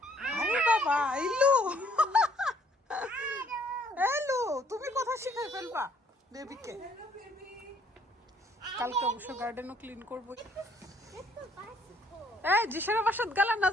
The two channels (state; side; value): normal; both; correlation 0.64